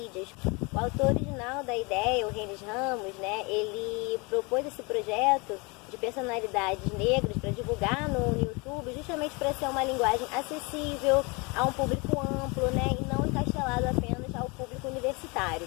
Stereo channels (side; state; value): right; quieter; 28.6 dB